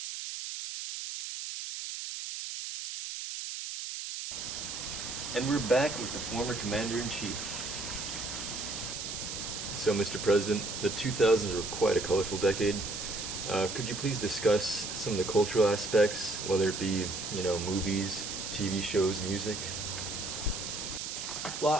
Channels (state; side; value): noise; right; hiss, 6 dB below the sound